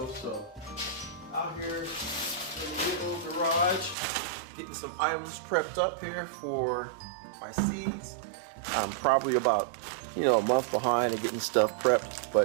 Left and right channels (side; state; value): left; drops out; at 4.0 s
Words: So, out here in the little garage, getting some items prepped up here for my seeds. I'm probably about, a month behind in getting stuff prepped,